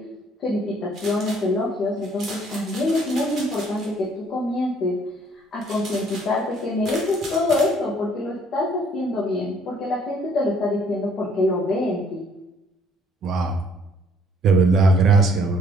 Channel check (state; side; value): normal; both; correlation 0.62